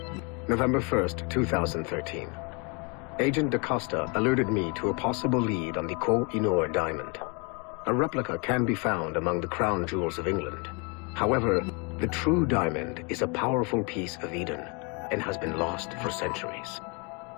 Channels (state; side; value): quieter; right; 32.5 dB